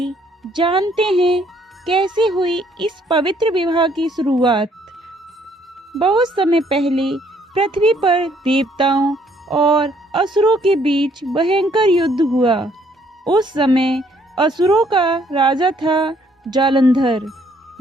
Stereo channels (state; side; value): normal; both; correlation 0.66